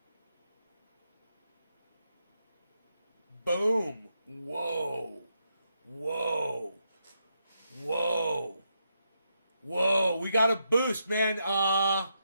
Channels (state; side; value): inverted; both; correlation -0.82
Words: Boom. Whoa. Whoa. Whoa. Whoa. We got a boost, man.